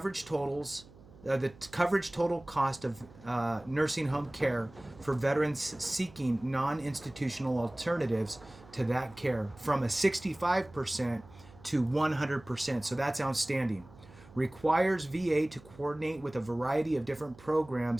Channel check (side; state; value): right; noise; hum, 22 dB below the sound